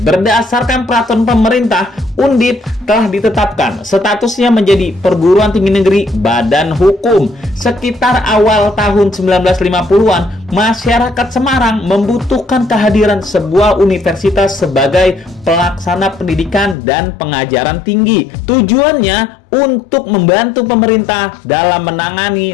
Berdasarkan peraturan pemerintah, Undip telah ditetapkan statusnya menjadi perguruan tinggi negeri badan hukum. Sekitar awal tahun 1950-an, masyarakat Semarang membutuhkan kehadiran sebuah universitas sebagai pelaksana pendidikan dan pengajaran tinggi. Tujuannya untuk membantu pemerintah dalam menangani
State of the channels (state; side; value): drops out; right; at 16.8 s